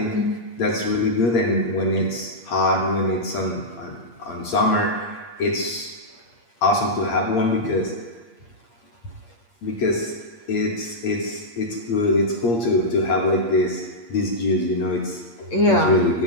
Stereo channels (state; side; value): late; right; 8.6 ms